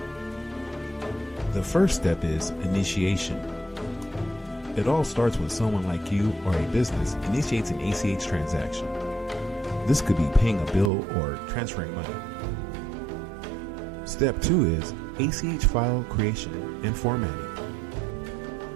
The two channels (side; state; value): left; drops out; at 10.9 s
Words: The first step is initiation. It all starts when someone like you or a business initiates an ACH transaction. This could be paying a bill or transferring money. Step 2 is ACH file creation and formatting.